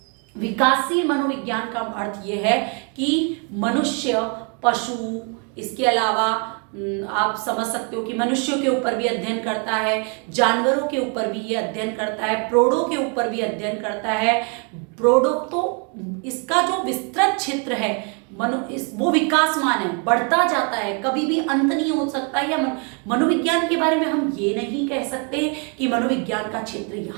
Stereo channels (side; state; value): left; quieter; 37.3 dB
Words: विकासशील मनोविज्ञान का अर्थ यह है कि मनुष्य, पशु, इसके अलावा आप समझ सकते हो कि मनुष्यों के ऊपर भी अध्ययन करता है, जानवरों के ऊपर भी ये अध्ययन करता है, प्रोडों के ऊपर भी अध्ययन करता है। प्रोडो तो इसका जो विस्तृत क्षेत्र है वो विकासमान है, बढ़ता जाता है, कभी भी अंत नहीं हो सकता। या मनोविज्ञान के बारे में हम ये नहीं कह सकते कि मनोविज्ञान का क्षेत्र